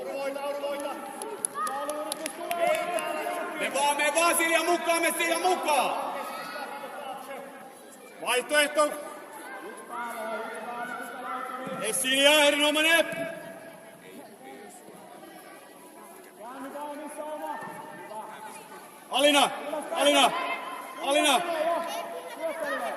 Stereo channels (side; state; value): both; identical; correlation 1.00